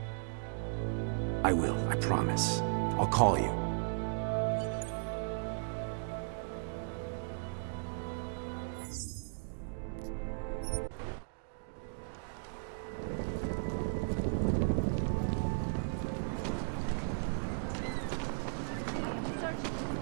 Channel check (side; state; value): left; silent; digital silence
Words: I will, I promise. I'll call you.